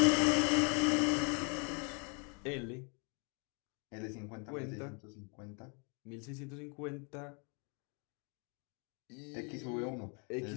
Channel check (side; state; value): right; quieter; 35.9 dB